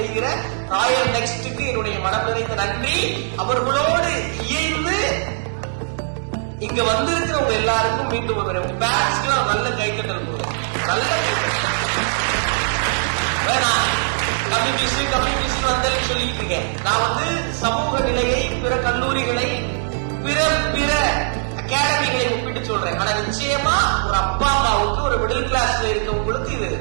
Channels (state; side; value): silent; left; 65 dB below the other